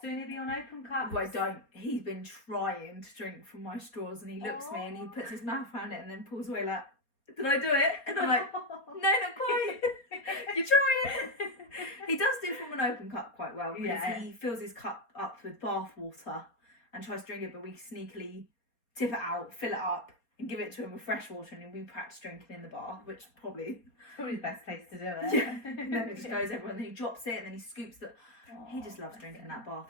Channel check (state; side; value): late; right; 4.2 ms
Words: Soon he'll be on open cups. Well, don't. He's been trying to drink from my straws, and he looks at me and he puts his mouth around it and then pulls away like, did I do it? And I'm like, no, not quite. You're trying. He does do from an open cup quite well, because Yeah. he fills his cup up with bath water and tries to drink it, but we sneakily tip it out, fill it up, and give it to him with fresh water, and then we practice drinking in the bath, which probably... Probably the best place to do it. Yeah. And then it just goes everywhere, and then he drops it, and then he scoops it. He just loves drinking that